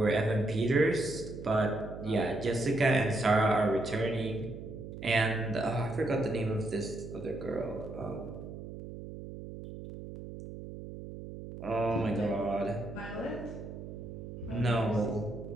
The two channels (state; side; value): noise; right; hum, 11 dB below the sound